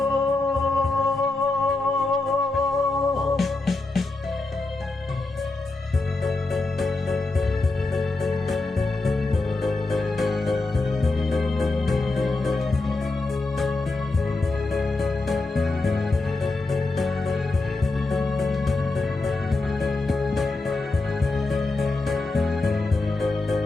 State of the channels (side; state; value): right; quieter; 3.3 dB